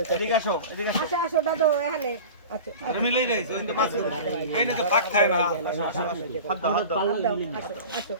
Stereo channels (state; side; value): inverted; both; correlation -0.35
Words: তো এদিকে আসো আচ্ছা আসো দাদা এখানে আচ্ছা আরে মিলাই যাইছো এই তো মাছ এই না তো পাক খায় না হাত দাও আসো আসো